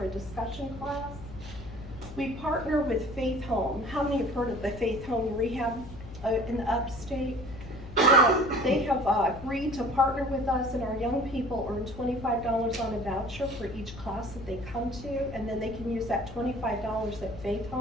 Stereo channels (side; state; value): left; noise; hum, 13 dB below the sound